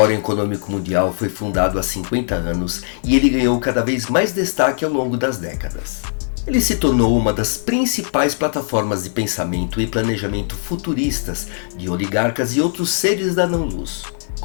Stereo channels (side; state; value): right; silent; 66 dB below the other